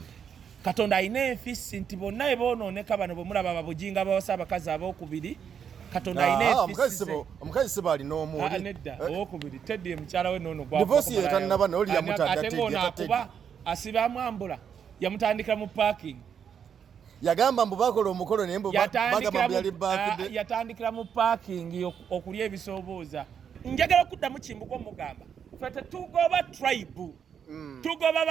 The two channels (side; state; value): left; quieter; 7.7 dB